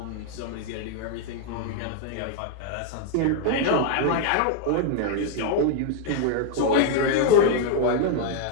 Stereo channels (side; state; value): both; different; correlation 0.00